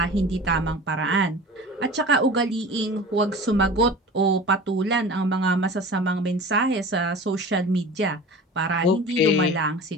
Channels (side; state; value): both; normal; correlation 0.38